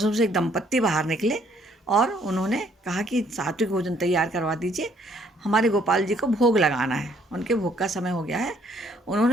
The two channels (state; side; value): normal; both; correlation 0.65